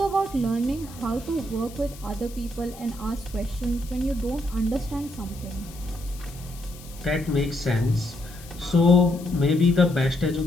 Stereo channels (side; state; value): left; noise; hiss, 19 dB below the sound